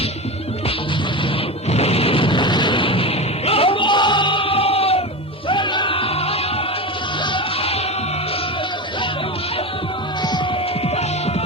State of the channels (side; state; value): both; normal; correlation 0.22